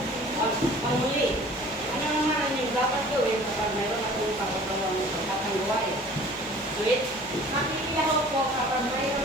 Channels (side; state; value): both; normal; correlation 0.48